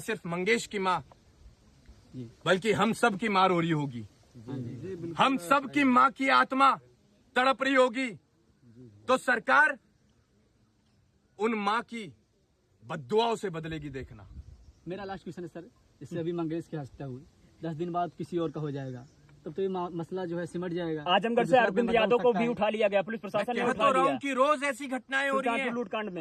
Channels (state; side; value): identical; both; correlation 1.00